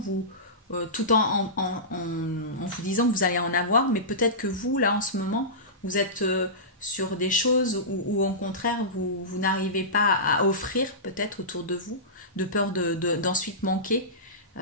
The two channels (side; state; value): both; normal; correlation -0.19